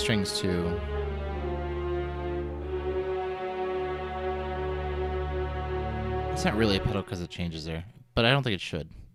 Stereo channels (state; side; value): identical; both; correlation 1.00